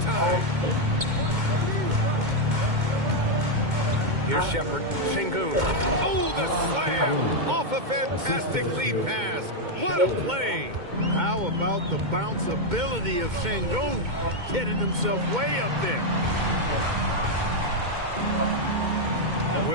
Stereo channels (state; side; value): late; left; 2.2 ms